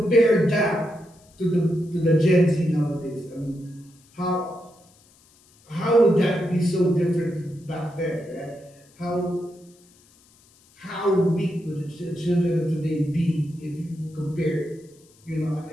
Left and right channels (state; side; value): noise; left; hiss, 30 dB below the sound